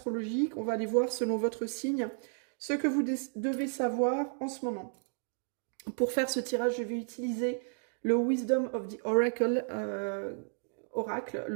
On va aller voir selon votre signe ce que vous devez savoir en ce moment. Pour faire ce tirage, je vais utiliser le Wisdom of the Oracle,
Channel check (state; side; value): silent; left; 56 dB below the other